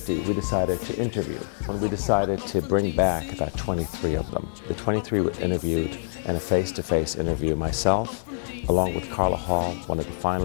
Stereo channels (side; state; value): right; silent; digital silence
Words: we decided to interview. When we decided to bring back about 23 of them. The 23 were interviewed in a face-to-face interview. Myself, along with Carla Hall, one of the